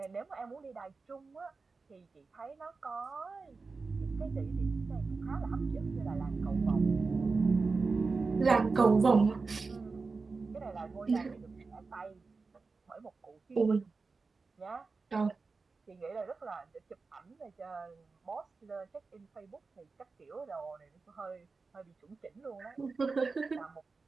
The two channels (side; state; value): left; quieter; 4.2 dB